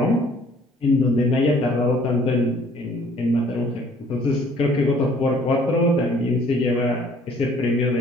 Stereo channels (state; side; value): normal; both; correlation 0.57